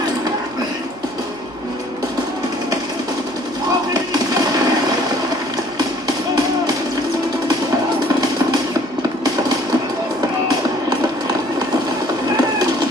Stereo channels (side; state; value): both; normal; correlation 0.56